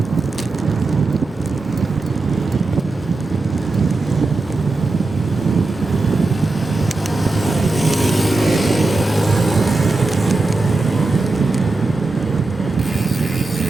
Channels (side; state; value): left; quieter; 3.4 dB